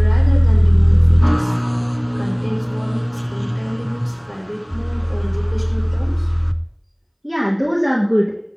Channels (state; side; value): identical; both; correlation 1.00